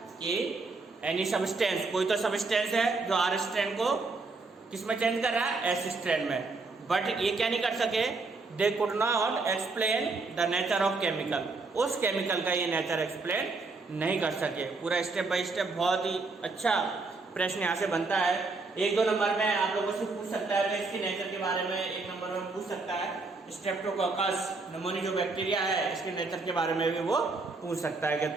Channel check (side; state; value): left; quieter; 3.8 dB